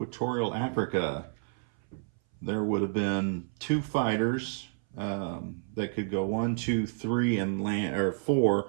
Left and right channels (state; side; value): silent; left; 58 dB below the other